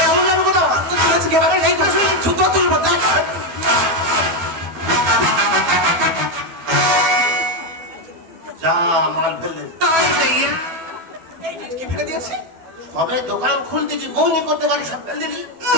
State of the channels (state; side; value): late; left; 12 ms